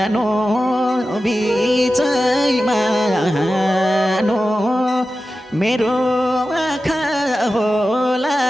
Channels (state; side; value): normal; both; correlation 0.93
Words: नो बिचैमा नो मेरो आँखा होला